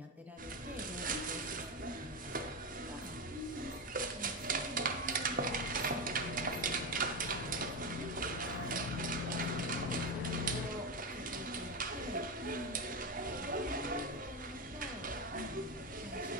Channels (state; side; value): normal; both; correlation 0.13